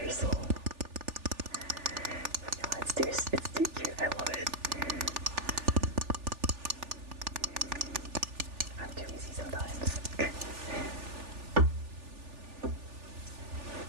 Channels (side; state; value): left; late; 3.4 ms